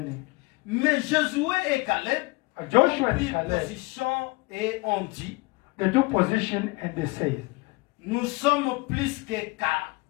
Mais Josué et Caleb Joshua ont and pris Caleb, position et ont dit, they took position and they said, nous sommes plus que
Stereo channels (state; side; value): quieter; right; 24.5 dB